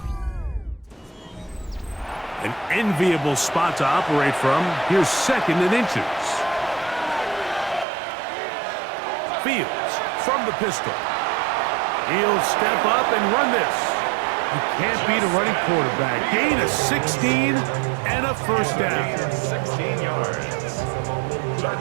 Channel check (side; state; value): left; drops out; at 7.9 s